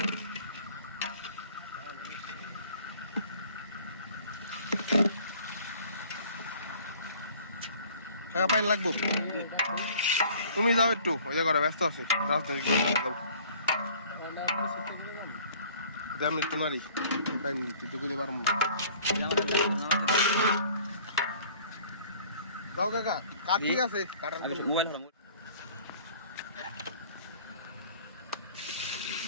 কাকা পানি লাগবো তুমি যাও একটু ওই জায়গাটা ব্যস্ত আছি রাজনৈতিক দেড় মিনিট তো নারী পাইনি তুই তো গুলি পারবো যাও কাকা কাঠ ঠিক আছে কাটার মোবাইল হারা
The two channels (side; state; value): both; inverted; correlation -0.51